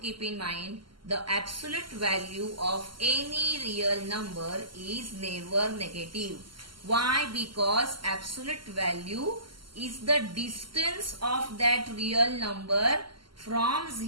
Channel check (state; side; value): late; left; 0.73 ms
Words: in mind the absolute value of any real number is never negative. Why? Because absolute value is the distance of that real number from